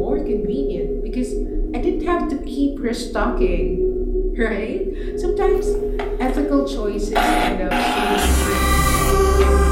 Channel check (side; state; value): both; identical; correlation 1.00